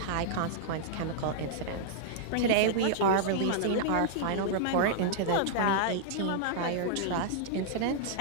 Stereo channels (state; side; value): different; both; correlation -0.01